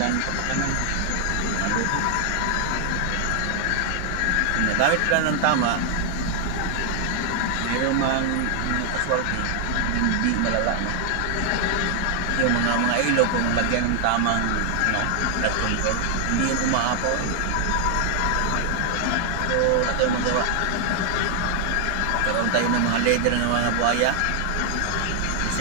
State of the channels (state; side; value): different; both; correlation 0.00